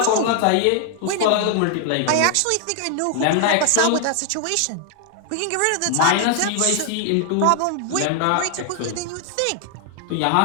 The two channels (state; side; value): different; both; correlation 0.00